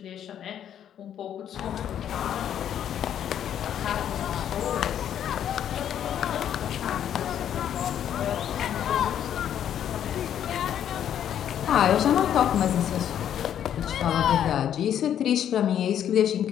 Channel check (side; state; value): right; quieter; 9.9 dB